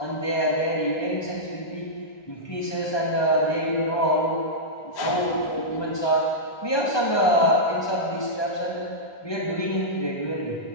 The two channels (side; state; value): right; late; 1.2 ms